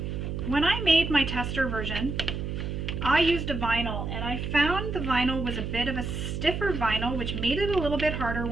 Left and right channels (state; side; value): noise; right; hum, 4 dB below the sound